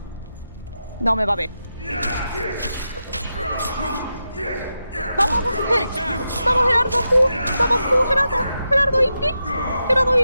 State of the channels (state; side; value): inverted; both; correlation -0.87